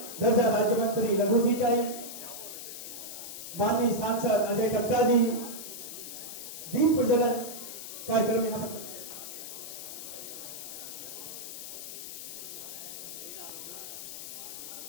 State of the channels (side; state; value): left; noise; hiss, 9 dB below the sound